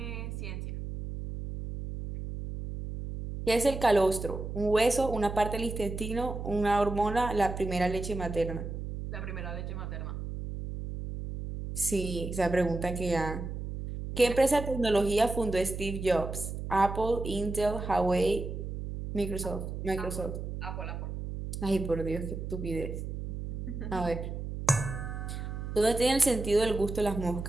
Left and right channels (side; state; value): right; noise; hum, 6 dB below the sound